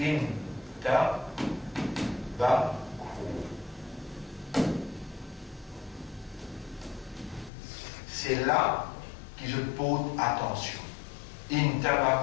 c'est là que je pose attention.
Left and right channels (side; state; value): right; drops out; at 7.5 s